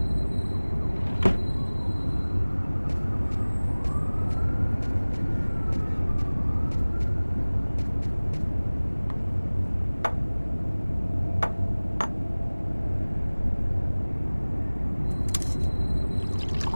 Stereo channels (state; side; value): inverted; both; correlation -1.00